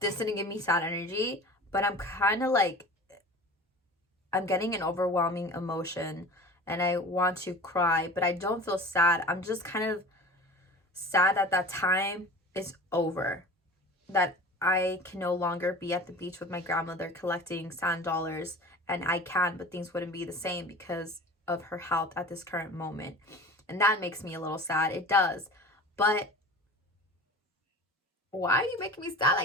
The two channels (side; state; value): both; normal; correlation 0.38